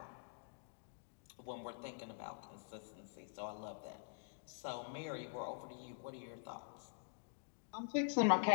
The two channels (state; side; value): silent; right; digital silence